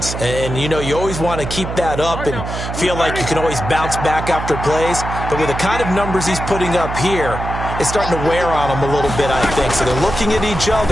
And, you know, you always want to keep that up and feel like you can always bounce back after plays. But with the kind of numbers he's putting up here, it's starting to wear on them a little bit, I think. So they're looking at each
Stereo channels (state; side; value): noise; right; hum, 6 dB below the sound